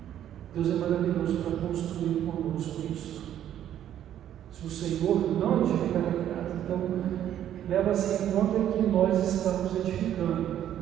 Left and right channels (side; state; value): left; quieter; 11.0 dB